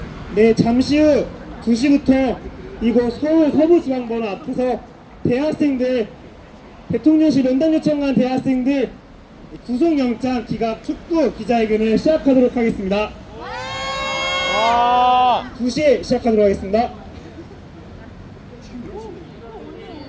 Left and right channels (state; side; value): identical; both; correlation 1.00